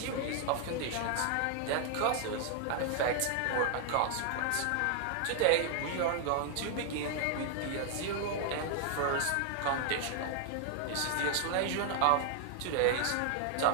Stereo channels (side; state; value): both; different; correlation 0.00